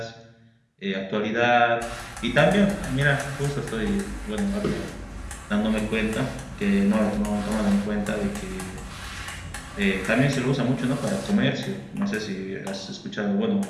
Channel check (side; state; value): both; identical; correlation 1.00